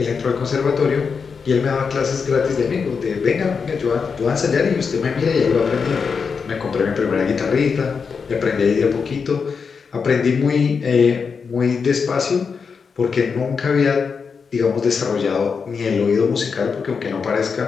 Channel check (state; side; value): quieter; right; 5.6 dB